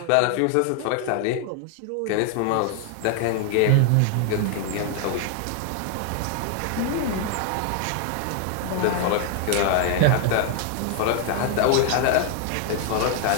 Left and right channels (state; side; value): different; both; correlation 0.00